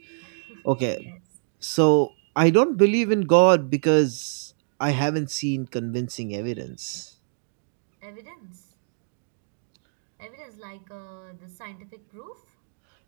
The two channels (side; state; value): left; silent; digital silence